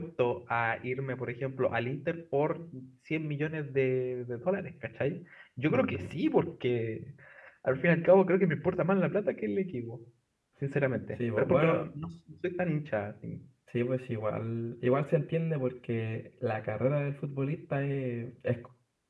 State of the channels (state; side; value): identical; both; correlation 1.00